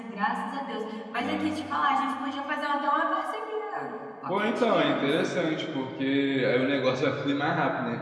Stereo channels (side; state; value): both; identical; correlation 1.00